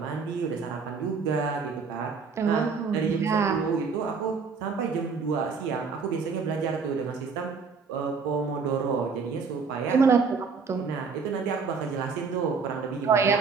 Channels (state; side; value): quieter; left; 5.2 dB